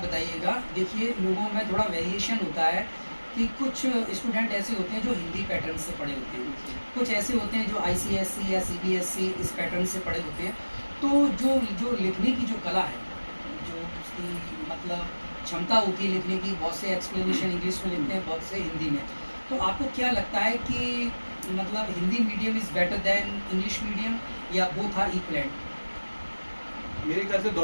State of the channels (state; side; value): inverted; both; correlation -1.00